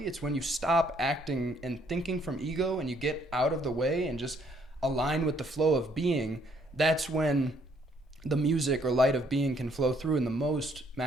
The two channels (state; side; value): normal; both; correlation 0.66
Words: It's when you stop acting and thinking from ego, and you get out of the way and just align with the flow of being. That's when the music or light of being can flow through in the most